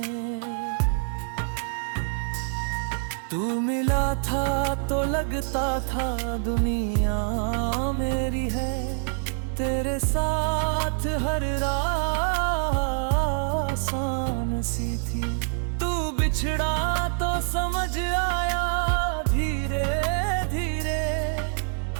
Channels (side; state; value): left; silent; digital silence